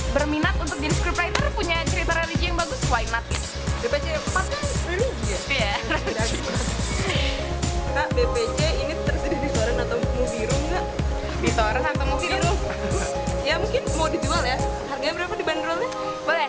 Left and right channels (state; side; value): identical; both; correlation 1.00